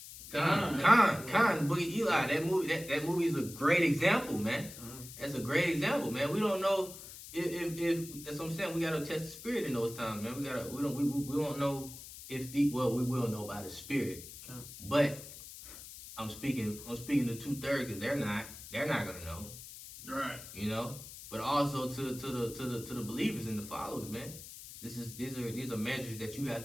The book of Eli. That movie is a great example, man. That's a great example, man. We don't know if that's what I'm saying. We gotta test the spirit in those times, man. We don't know if we will know by the spirit. But I'm speaking to 2/3 because they're not gonna know. Right. But also to the believers and the followers, man. These are measures that you have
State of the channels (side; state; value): left; noise; hiss, 14 dB below the sound